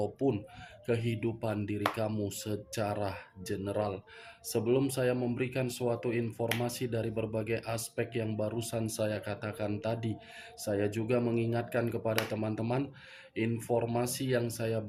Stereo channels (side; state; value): both; identical; correlation 1.00